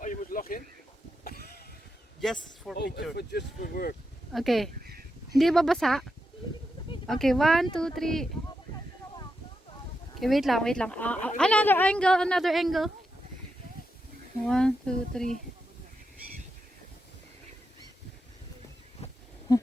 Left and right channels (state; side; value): normal; both; correlation 0.86